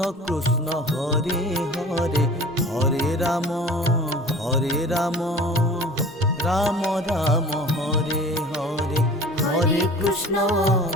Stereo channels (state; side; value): normal; both; correlation 0.43